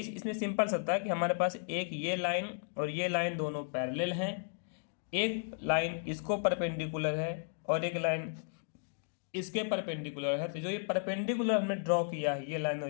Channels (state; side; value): silent; right; digital silence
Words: इसमें सिंपल सा था कि हमारे पास एक ये लाइन और ये लाइन दोनों पैरेलल हैं, एक लाइन इसको परपेंडिकुलर है और एक लाइन इसके परपेंडिकुलर है, तो जो ये परपेंडिकुलर हमने ड्रॉ किया है ये लाइन